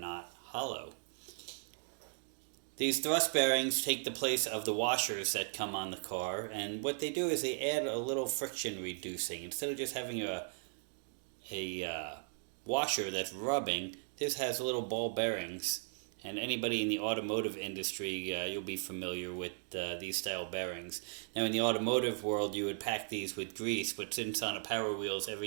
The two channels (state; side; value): silent; left; digital silence